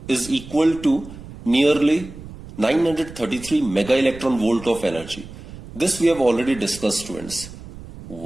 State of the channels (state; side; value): noise; right; rumble, 15 dB below the sound